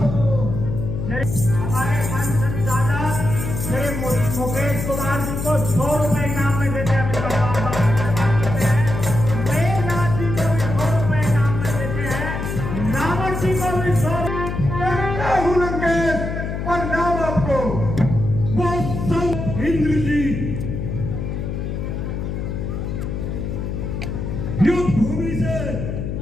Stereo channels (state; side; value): noise; left; hum, 4 dB below the sound